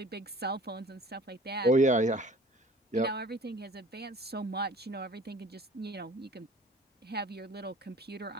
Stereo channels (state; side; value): normal; both; correlation 0.48